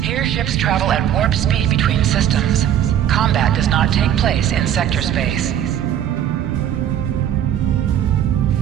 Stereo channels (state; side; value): quieter; left; 10.3 dB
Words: ships travel at warp speed between systems. Combat does not take place in sector space.